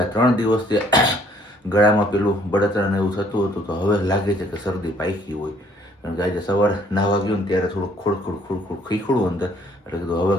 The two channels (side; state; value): both; normal; correlation 0.62